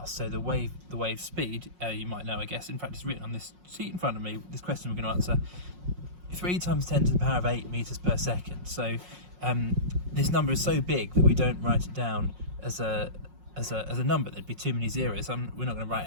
So the wave speed, you might know, I guess, in fact it's written on this sheet in front of me, this question we're going to answer, 3 times 10 to the power of 8 meters per second. So this number is so big that we don't write it down as a number. There'd be too many zeros. We're not going to write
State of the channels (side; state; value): left; late; 5.5 ms